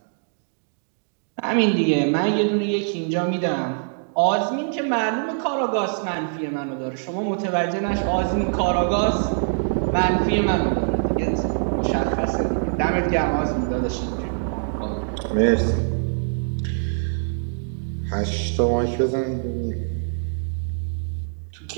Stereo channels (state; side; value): silent; left; digital silence